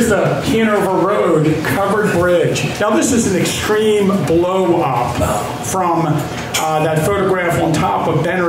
the Hanover Road covered bridge. Now this is an extreme blow up from that photograph on top of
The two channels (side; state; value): both; identical; correlation 1.00